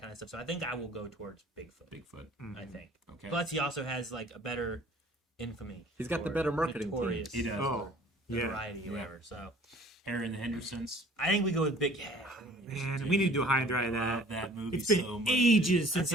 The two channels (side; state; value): both; normal; correlation 0.52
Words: kind of stuff. So I think I will go towards Bigfoot. I think. Okay. Plus he also has like a better infamy. He's got the or better marketing team. notorious He does. Oh, yeah. notoriety or whatever. So Harry and the Hendersons. I think we go with Big. Man, we need to do a high and dry of Love that. that movie It's been so much. ages since